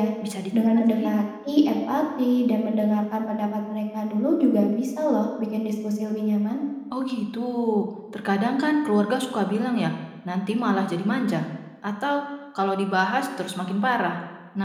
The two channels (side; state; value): both; identical; correlation 1.00